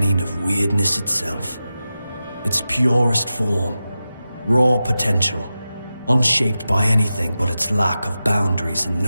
of weirdness itself. Its purest form, raw potential, unshaped by anything but its lack of boundaries and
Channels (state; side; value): inverted; both; correlation -0.93